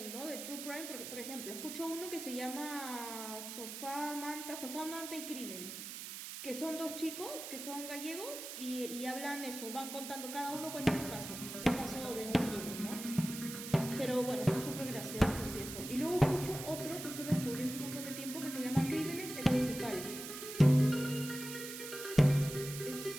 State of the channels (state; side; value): noise; right; hiss, 8 dB below the sound